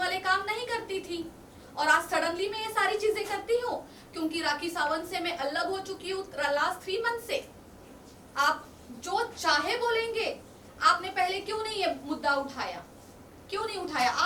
काम नहीं करती थी। और आज सडनली मैं ये सारी चीजें करती हूँ क्योंकि राखी सावंत से मैं अलग हो चुकी हूँ लास्ट 3 मंथ से। आप जो चाहे बोलेंगे, आपने पहले क्यों नहीं ये मुद्दा उठाया? क्यों नहीं उठाया?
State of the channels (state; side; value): identical; both; correlation 1.00